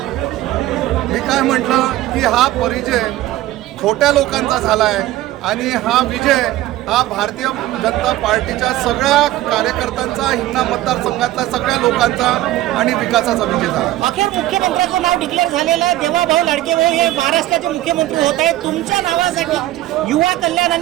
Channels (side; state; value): left; quieter; 15.3 dB